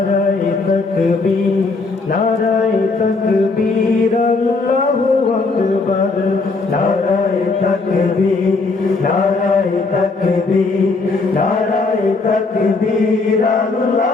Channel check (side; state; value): right; quieter; 3.8 dB